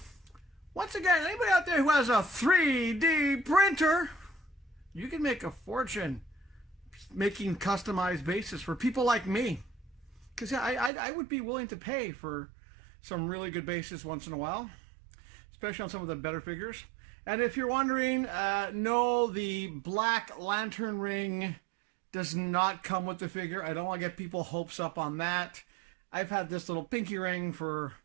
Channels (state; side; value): drops out; left; at 10.9 s